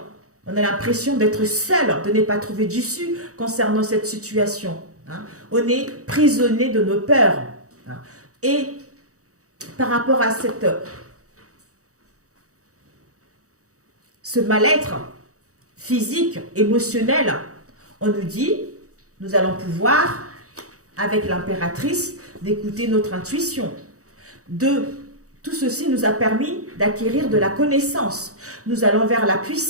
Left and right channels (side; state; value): left; late; 0.65 ms